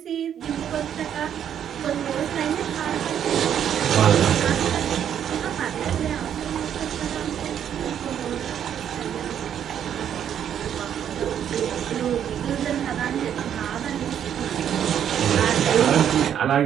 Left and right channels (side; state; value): left; quieter; 9.3 dB